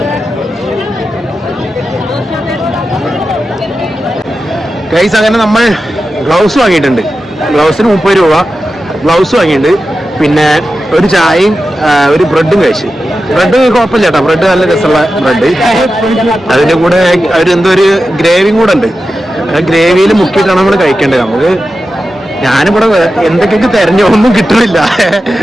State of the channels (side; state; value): both; normal; correlation 0.92